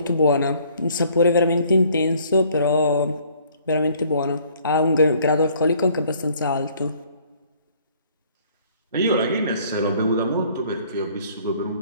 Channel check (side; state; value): both; inverted; correlation -0.59